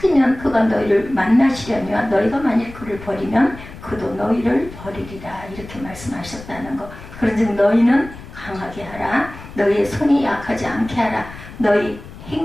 그가 너희를 만나시려니와 너희가 만일 그를 버리면 그도 너희를 버리리라. 이렇게 말씀하셨다는 것. 그런즉 너희는 강하게 하라. 너희의 손이 약하지 않게 하라. 너희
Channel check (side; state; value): left; noise; rumble, 16 dB below the sound